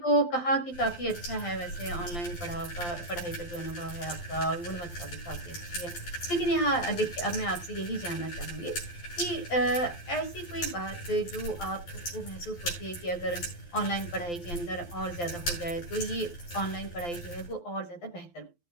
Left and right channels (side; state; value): right; late; 12 ms